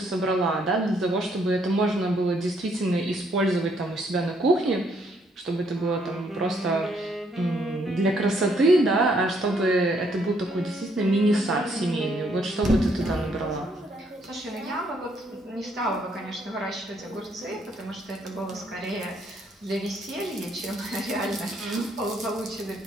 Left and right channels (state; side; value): normal; both; correlation 0.70